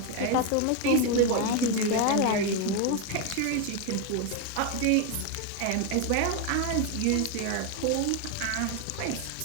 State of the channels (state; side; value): different; both; correlation 0.01